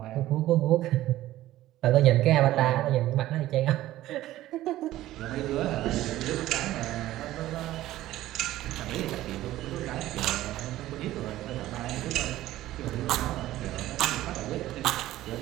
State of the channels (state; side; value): quieter; left; 15.0 dB